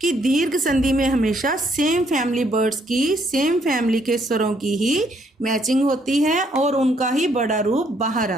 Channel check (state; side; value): normal; both; correlation 0.69